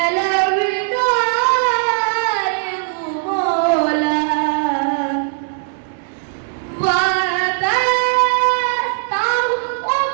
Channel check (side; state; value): left; silent; digital silence